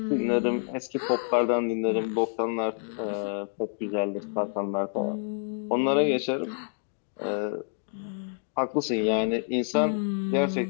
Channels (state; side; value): silent; right; 59 dB below the other